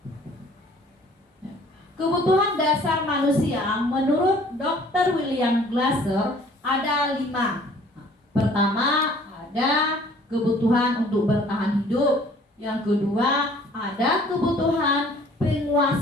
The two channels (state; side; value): normal; both; correlation 0.55